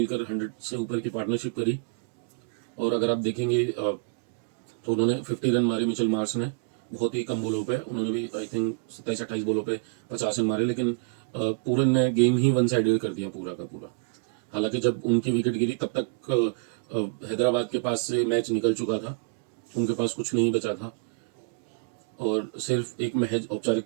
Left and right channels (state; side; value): quieter; left; 35.1 dB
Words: 100 से ऊपर की पार्टनरशिप करी। और अगर आप देखेंगे तो उन्होंने 50 रन मारे मिचेल मार्श ने, बहुत ही कम बॉलों पे, उन्होंने भी आई थिंक 27-28 बॉलों पे 50 रन मारे, लेकिन पूरन ने गेम ही वन साइडेड कर दिया पूरा का पूरा। हालांकि जब उनकी विकेट गिरी तब तक हैदराबाद के पास से मैच निकल चुका था, उनके पास कुछ नहीं बचा था और सिर्फ एक महज